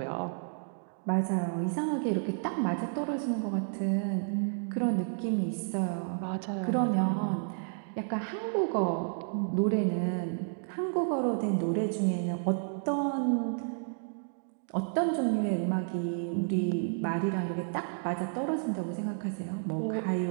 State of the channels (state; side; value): silent; left; digital silence